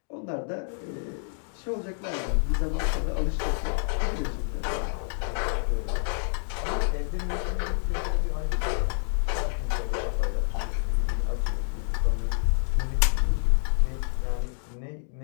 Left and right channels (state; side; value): silent; right; digital silence